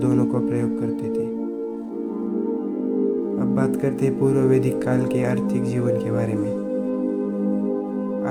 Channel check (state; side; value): identical; both; correlation 1.00